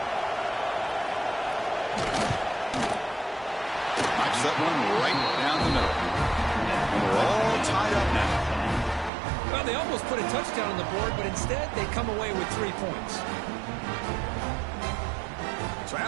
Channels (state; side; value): drops out; left; at 9.1 s